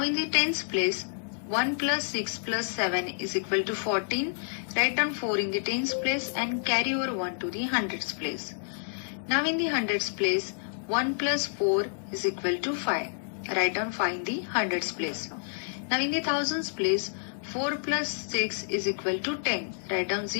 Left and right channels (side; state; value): right; silent; 59 dB below the other